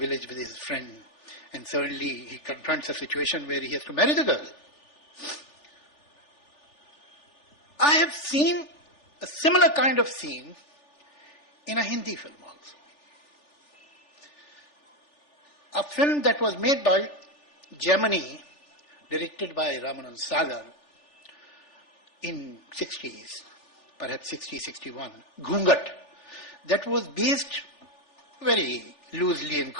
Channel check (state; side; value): late; right; 3.4 ms